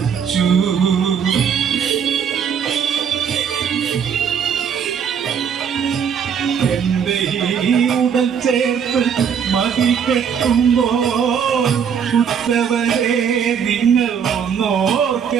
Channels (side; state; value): left; quieter; 7.4 dB